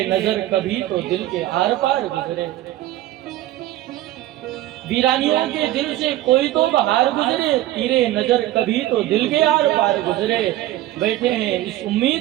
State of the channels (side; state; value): left; quieter; 15.0 dB